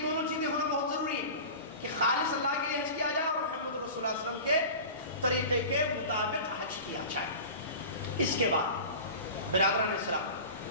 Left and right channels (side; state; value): both; inverted; correlation -0.34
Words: دونوں چیزیں ہونا بہت ضروری ہیں کہ خالص اللہ کے لیے حج کیا جائے اور محمد رسول اللہ صلی اللہ علیہ وسلم کے طریقے کے مطابق حج کیا جائے۔ اس کے بعد برادران اسلام،